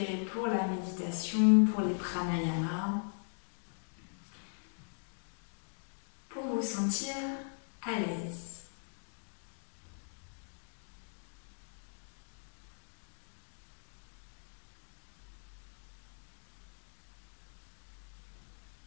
pour la méditation, pour les pranayamas, pour vous sentir à l'aise.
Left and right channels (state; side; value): silent; right; digital silence